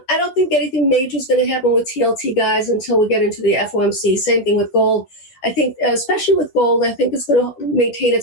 don't think anything major is going to happen with TLT, guys, until we get into the FOMC. Same thing with gold. I think, especially with gold, I think it's going to maintain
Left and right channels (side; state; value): right; late; 11 ms